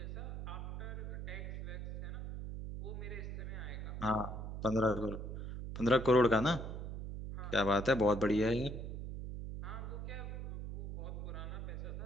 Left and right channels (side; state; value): right; noise; hum, 6 dB below the sound